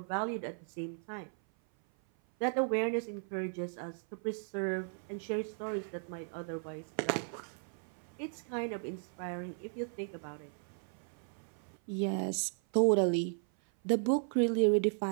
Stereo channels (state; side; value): silent; left; 54 dB below the other